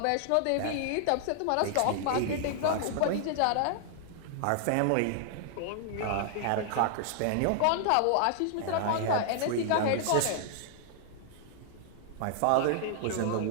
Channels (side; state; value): both; different; correlation -0.01